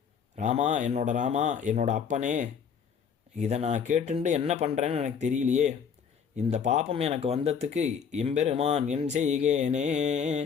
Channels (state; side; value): quieter; right; 6.9 dB